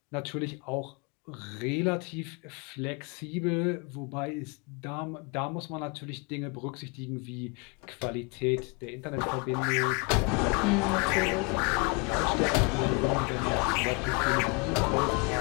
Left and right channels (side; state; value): right; quieter; 30.9 dB